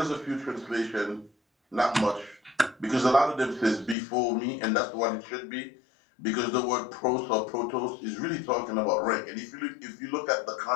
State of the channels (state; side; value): drops out; right; at 4.0 s